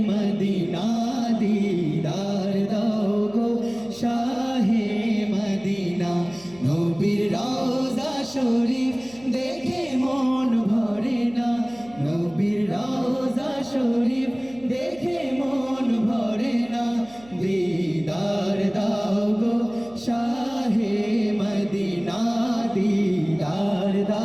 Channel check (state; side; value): noise; right; hum, 23 dB below the sound